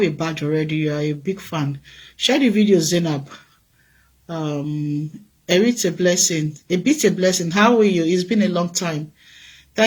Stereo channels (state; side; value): identical; both; correlation 1.00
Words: a badge already. You are a big fan. Share the video, Zainab. It's a blessing. A bit a blessing. How are you? It's been a long time.